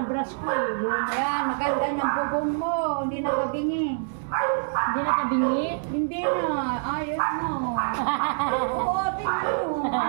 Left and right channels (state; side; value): silent; left; digital silence